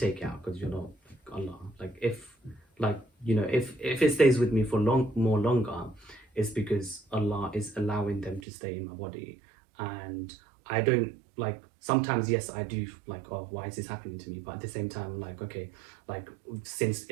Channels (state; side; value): drops out; left; at 8.4 s